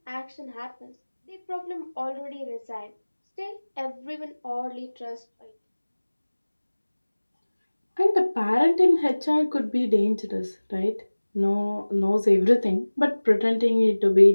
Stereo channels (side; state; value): both; inverted; correlation -1.00